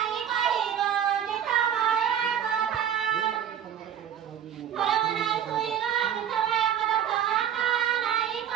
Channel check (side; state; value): left; quieter; 9.6 dB